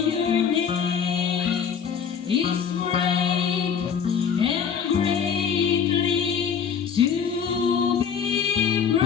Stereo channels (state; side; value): quieter; right; 7.2 dB